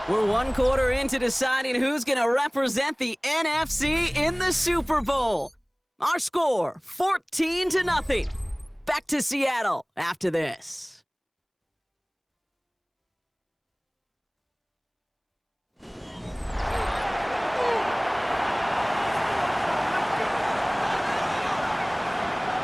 We're one quarter into deciding who's going to represent the NFC in the Super Bowl. Our score, 14-0. Back to Seattle after this.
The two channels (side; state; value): both; identical; correlation 1.00